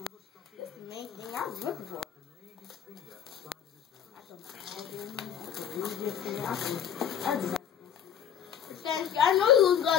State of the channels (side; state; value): right; quieter; 9.1 dB